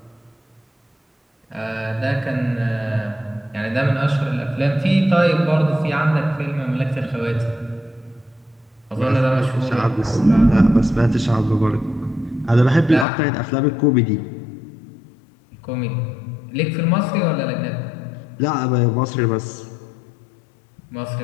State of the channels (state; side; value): drops out; right; at 13.1 s